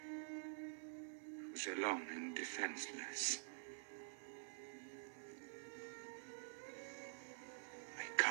who's alone and defenseless. I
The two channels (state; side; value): silent; left; digital silence